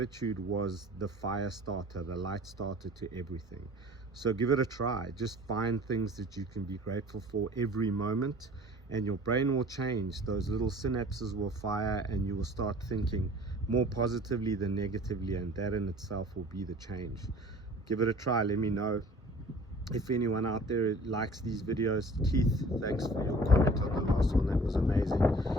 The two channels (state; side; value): normal; both; correlation 0.48